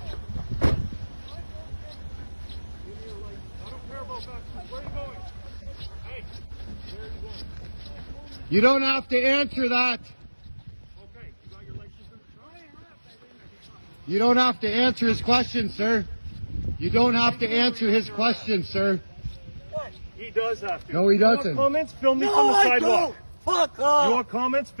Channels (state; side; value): inverted; both; correlation -1.00